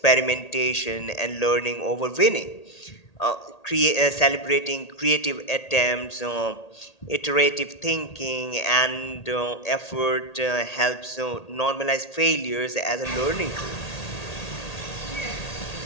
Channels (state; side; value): late; right; 1.8 ms